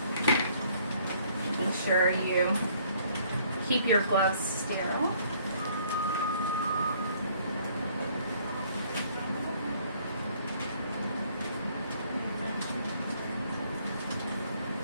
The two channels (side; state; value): both; inverted; correlation -0.62